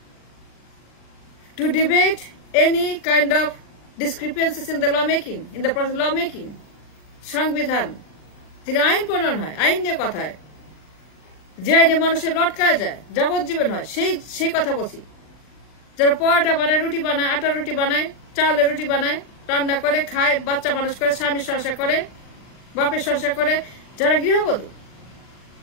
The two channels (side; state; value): right; late; 39 ms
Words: to debate any kind of discrepancies in the lawmaking, in the process of lawmaking, সংবিধান, তিনি আইন প্রণয়ন হয়, আইন নিয়ে কথা হয়, যে আইনে মানুষের লটকায় যায়, যাবজ্জীবন হয়, সেই কথা বলছি। যারা পরোটা বানায়, রুটি বানায়, আটা রুটি বানায়, চাউলের রুটি বানায়, রান্না করে খায়, বাচ্চা মানুষ করে, স্বামীর সংসার করে, বাপের সংসার করে, যারা গৃহবধূ,